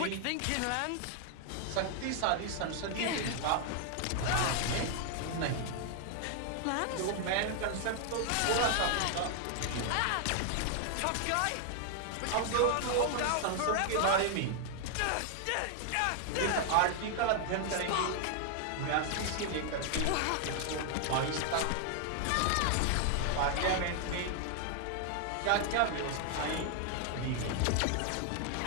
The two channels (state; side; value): different; both; correlation 0.00